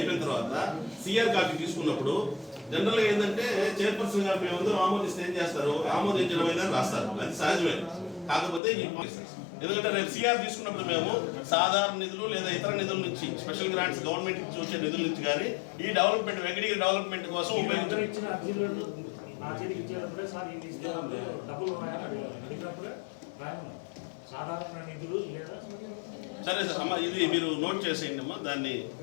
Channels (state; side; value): drops out; right; at 8.6 s